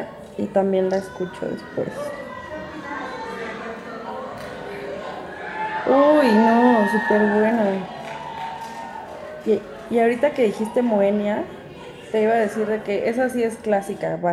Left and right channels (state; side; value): identical; both; correlation 1.00